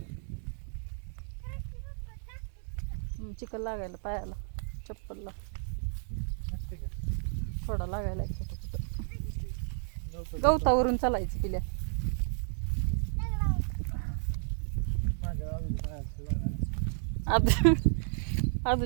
चिकन लागायला पायाला, चप्पलला थोडा लागायला कुठं गवतावरून चालायचं पिल्या.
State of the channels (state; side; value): silent; left; digital silence